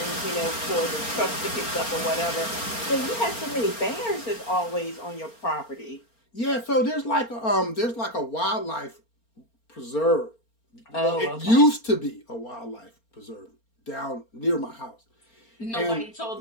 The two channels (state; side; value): late; right; 4.3 ms